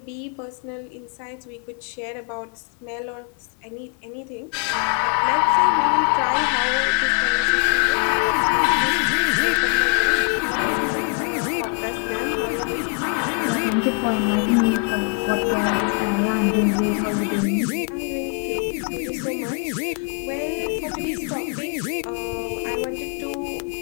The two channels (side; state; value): right; quieter; 36.4 dB